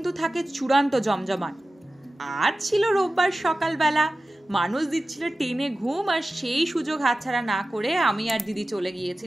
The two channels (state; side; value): normal; both; correlation 0.95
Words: থাকে চূড়ান্ত জমজমাট। আজ ছিল রোববার সকালবেলা, মানুষ দিচ্ছিল টেনে ঘুম, আর সেই সুযোগ হাতছাড়া না করে আমি আর দিদি চলে